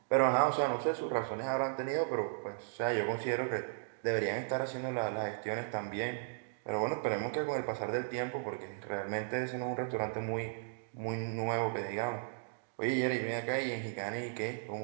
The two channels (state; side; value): silent; left; digital silence